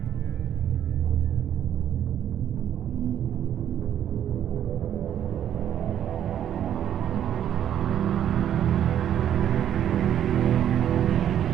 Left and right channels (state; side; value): quieter; left; 10.3 dB